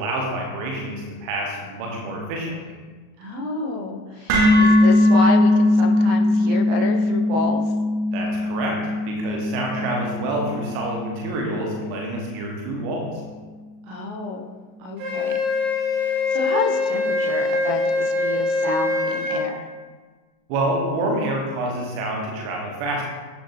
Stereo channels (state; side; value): late; left; 38 ms